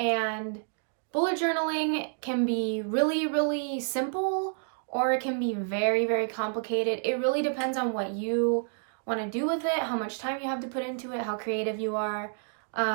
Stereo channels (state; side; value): silent; left; 58 dB below the other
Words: bullet journaling can be really simple, or it can be very complicated. It really depends on what you want to do with it, how much time you have to put into it, how creative you are.